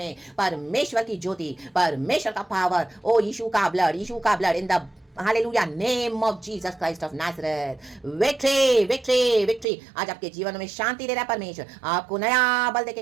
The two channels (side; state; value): left; drops out; at 9.7 s